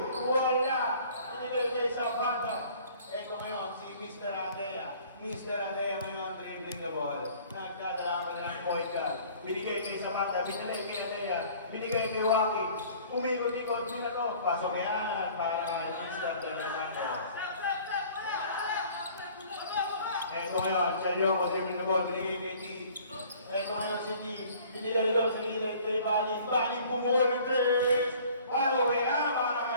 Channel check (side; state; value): both; inverted; correlation -0.52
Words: Wala. Binigay kay Zapata. Eto ngayon, si Mr. Adea. Mr. Adea ngayon, dribbling the ball. Nagdadala ka ng point guard. Binigay kay Zapata. Binigay kay Adea. Binigay kay Rocky. Umikot-ikot nila to. Pasok yan para Mr. Adea. Eto ngayon, Chelyongo, dribbling the ball. Binigay kay T. Eto ngayon si T. Binigay doon sa gilid kay Balin. Balin bumuhol ng 3. Follow-away na para